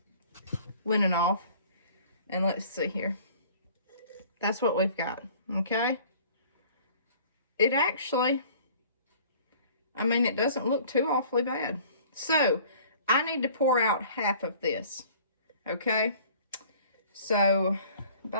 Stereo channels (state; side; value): inverted; both; correlation -0.51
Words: linen off. And let's see here. That's what we've got, okay? It actually, I mean, it doesn't look too awfully bad. So, I need to pour out half of this, okay? So,